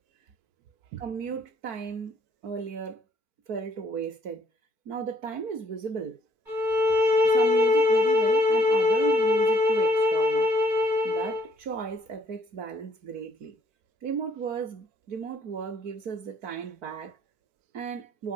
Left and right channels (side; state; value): left; late; 4.4 ms